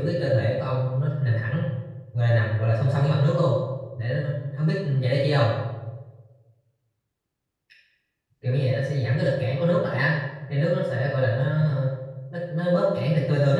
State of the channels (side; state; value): both; identical; correlation 1.00